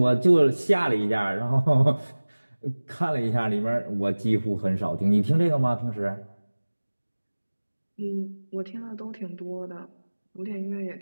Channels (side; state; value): both; inverted; correlation -1.00